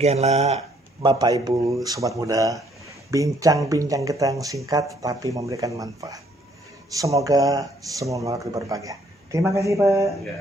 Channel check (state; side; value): normal; both; correlation 0.65